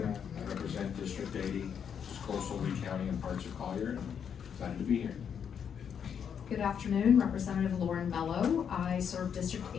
I represent District 80, which is coastal Lee County and parts of Collier. I'm excited to be here. Good afternoon, Representative Lauren Bello. I serve District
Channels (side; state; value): right; quieter; 7.7 dB